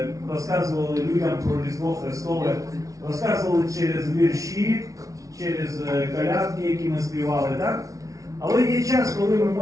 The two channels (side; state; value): left; late; 0.17 ms